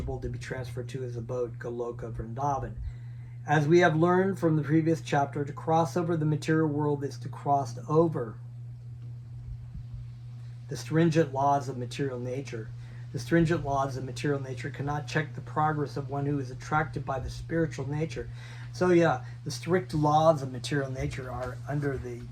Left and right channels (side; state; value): both; identical; correlation 1.00